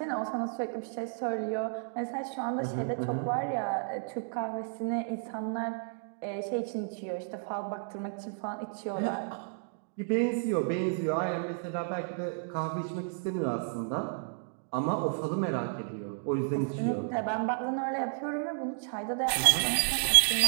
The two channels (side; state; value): left; silent; digital silence